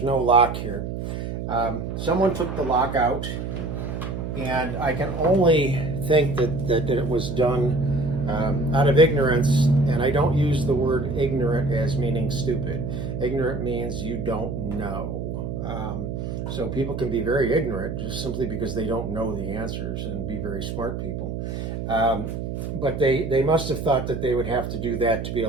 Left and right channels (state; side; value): noise; right; hum, 5 dB below the sound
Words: no lock here. Someone took the lock out, and I can only think that it was done out of ignorance, and I don't use the word ignorant as meaning stupid. Ignorant means you don't know. So people can be very ignorant just simply because they don't know the answers and be very smart people. But they must have thought that they would have to do that to be